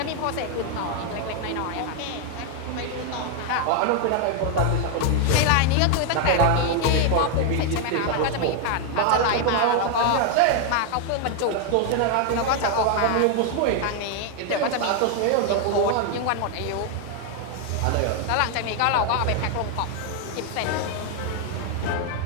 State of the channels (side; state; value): both; different; correlation 0.00